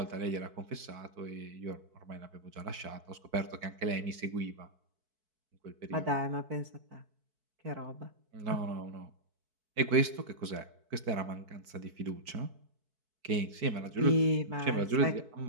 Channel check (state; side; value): late; left; 4.6 ms